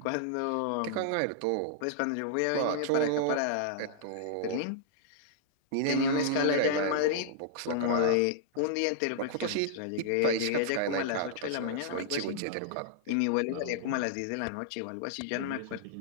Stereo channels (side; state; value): both; different; correlation -0.01